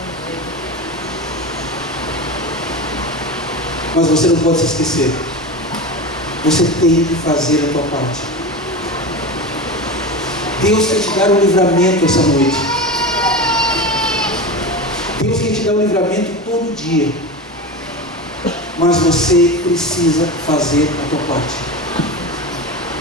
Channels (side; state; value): both; normal; correlation 0.25